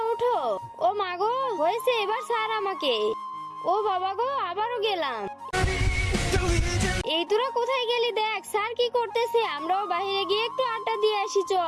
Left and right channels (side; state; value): both; identical; correlation 1.00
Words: ওঠো। ও মা গো, হয়েছে, এবার ছাড় আমাকে। ও বাবা গো, আবারও গেলাম। এই তোরা কোথায় গেলি? দেখ স্যার কি করতেছে, আমরাও বাইরে গিয়ে একটু আড্ডা দিয়ে আসি,